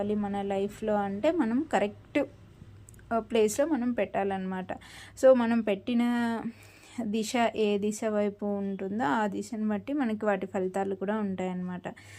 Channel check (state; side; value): identical; both; correlation 1.00